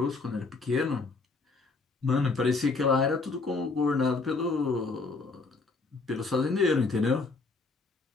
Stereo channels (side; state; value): right; quieter; 3.9 dB